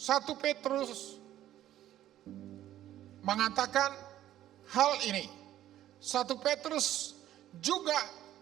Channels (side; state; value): left; quieter; 12.8 dB